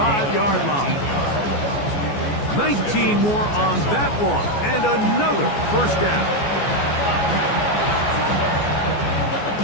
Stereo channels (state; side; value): late; right; 14 ms